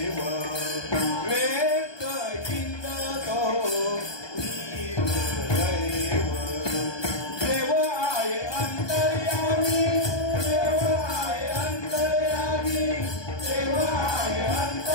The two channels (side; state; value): right; late; 1.2 ms